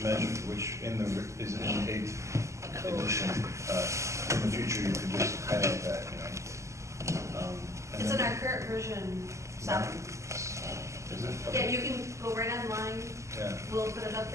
measure, which is it in the 8th edition? In the future, you could just highlight that, you know. And It's in then- our current version 7. Is it? Yeah, you can go right online. Yeah. We'll put it up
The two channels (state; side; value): late; left; 0.14 ms